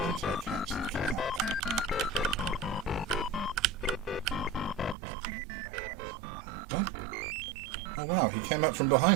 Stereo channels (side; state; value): left; drops out; at 5.0 s